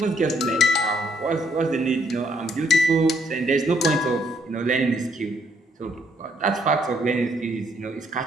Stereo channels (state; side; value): normal; both; correlation 0.70